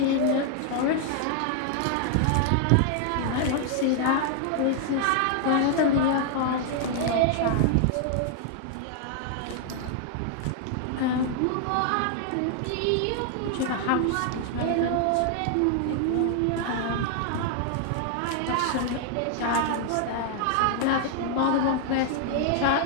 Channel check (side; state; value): both; different; correlation 0.00